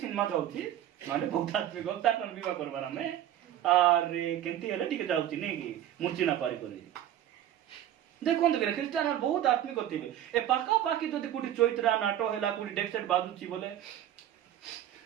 जाउची माने बहुत आत्मिक तार विवाह करबार आमे अरे केमती हेले टिके जाउची नै कि मुर्ची ना पारी करी देखो तो ख्रिस्टियान बहुत आत्मिक थिबे ए पाका पाकी जदि कोठी चैत्रा नाटो हेला कोठी डेक सेट बाजुची बोले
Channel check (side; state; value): left; quieter; 11.7 dB